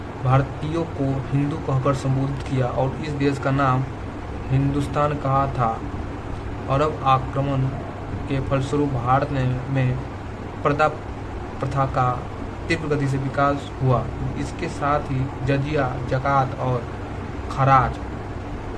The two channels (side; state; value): both; identical; correlation 1.00